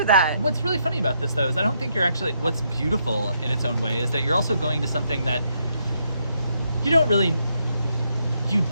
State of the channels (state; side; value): inverted; both; correlation -0.77